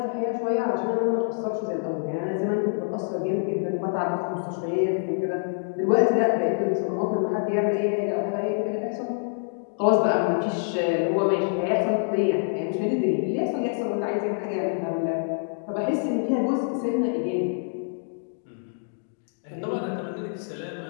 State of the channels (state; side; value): silent; right; digital silence